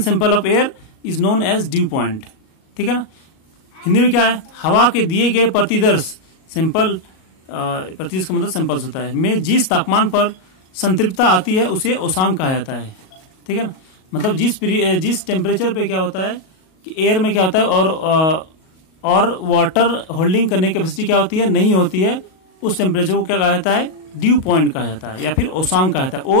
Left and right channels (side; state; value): right; late; 38 ms